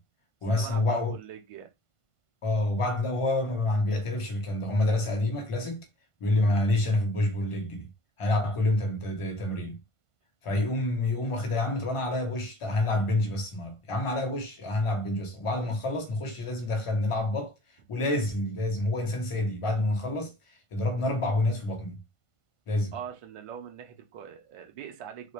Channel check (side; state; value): right; late; 1.5 ms